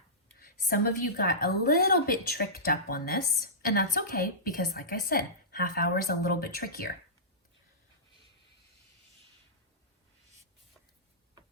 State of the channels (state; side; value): normal; both; correlation -0.19